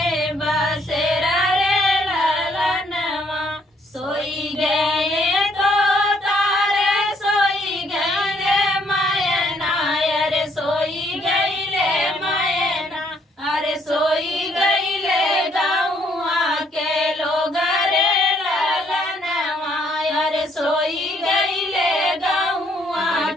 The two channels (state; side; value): normal; both; correlation 0.68